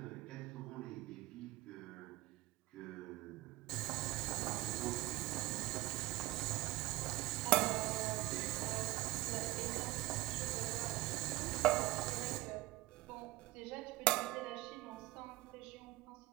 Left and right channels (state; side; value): quieter; left; 18.3 dB